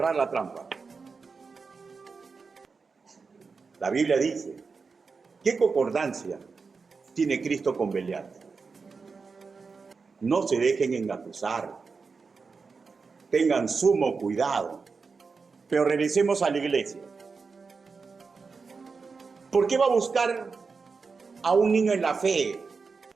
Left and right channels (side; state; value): left; quieter; 4.8 dB